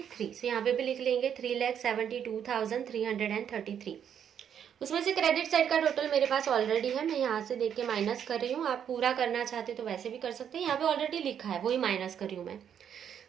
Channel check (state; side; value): quieter; left; 8.7 dB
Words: यहाँ पे भी लिख लेंगे 3,72,333। उसमें से क्रेडिट साइड का टोटल मेरे पास ऑलरेडी है, मैं यहाँ से देख के माइनस कर रही हूँ। आप पूरा करना चाहते तो वैसे भी कर सकते हैं, यहाँ पे ऑलरेडी लिखा है वही माइनस कर रही हूँ मैं।